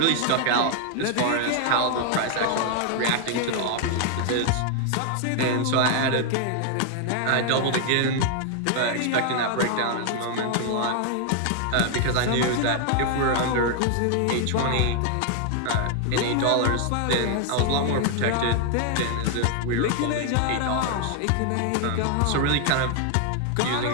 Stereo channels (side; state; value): both; different; correlation 0.00